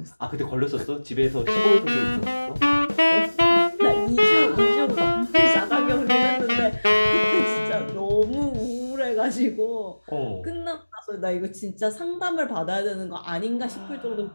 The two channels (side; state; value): both; inverted; correlation -1.00